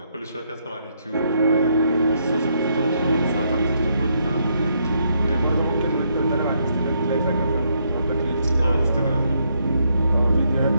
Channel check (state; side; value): inverted; both; correlation -0.75